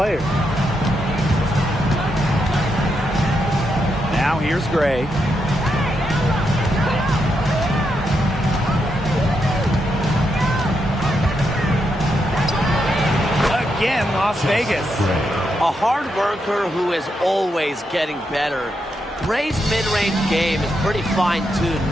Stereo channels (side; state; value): both; normal; correlation 0.82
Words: Now here's Gray. Again, Las Vegas. A A hard worker who is always getting better. Gray's mid-range game is pretty